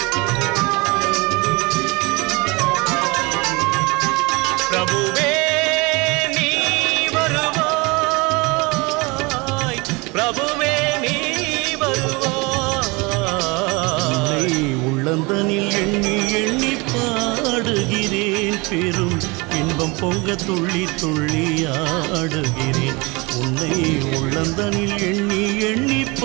பிரபுவே நீ வருவாய், பிரபுவே நீ வருவாய். உள்ளந்தனில் எண்ணி எண்ணி பாடுகிறேன், பெரும் இன்பம் பொங்க துள்ளி துள்ளி ஆடுகிறேன். உன்னை உள்ளந்தனில் எண்ணி எண்ணி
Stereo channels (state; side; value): quieter; left; 26.3 dB